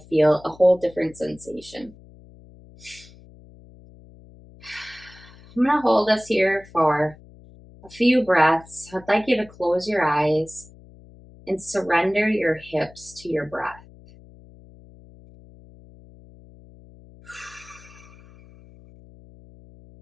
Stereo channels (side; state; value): left; noise; hum, 23 dB below the sound